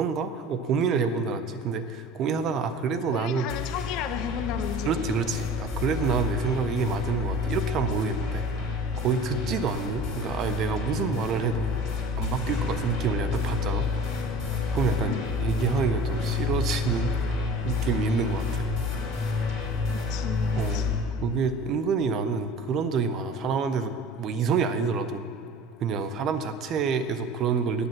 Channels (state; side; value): normal; both; correlation 0.42